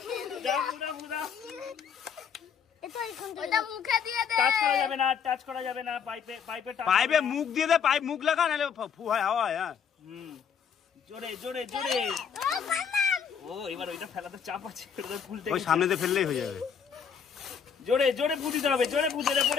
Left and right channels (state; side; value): quieter; right; 7.1 dB